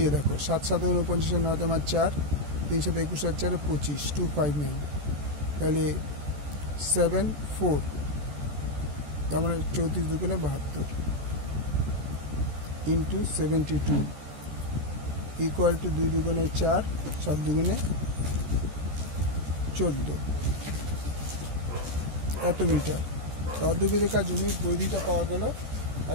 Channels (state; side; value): late; left; 14 ms